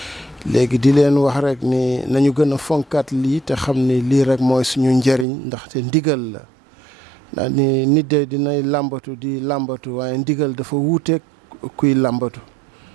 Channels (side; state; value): left; drops out; at 5.2 s